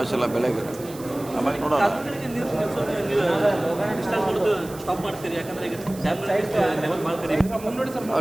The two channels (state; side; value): noise; right; hiss, 18 dB below the sound